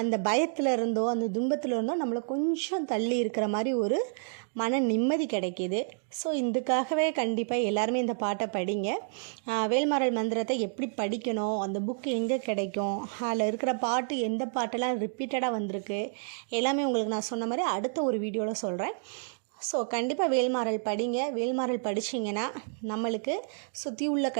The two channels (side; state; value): left; silent; 58 dB below the other